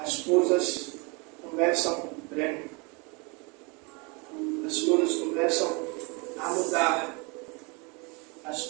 coisas começam bem. As coisas começam a mudar. As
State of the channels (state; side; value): quieter; left; 30.0 dB